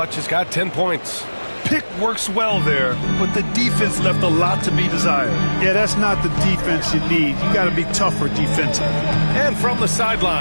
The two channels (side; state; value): both; inverted; correlation -1.00